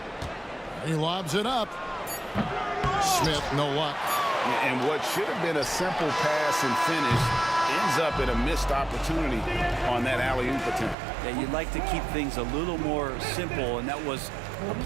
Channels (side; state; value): left; drops out; at 11.0 s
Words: He lobs it up. Smith, no luck. And what should have been a simple pass and finish ends up in a missed opportunity on that alley-oop attempt. Yeah, you'd like to keep things a little more simple, and that was a